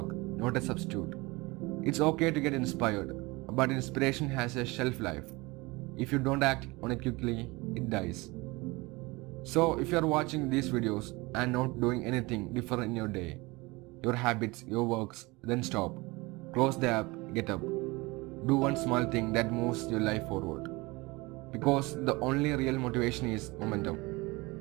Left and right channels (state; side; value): quieter; left; 23.6 dB